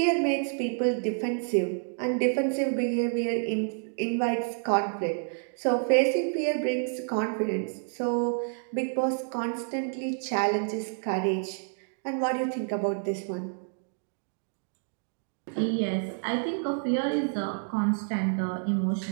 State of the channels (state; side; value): silent; left; 59 dB below the other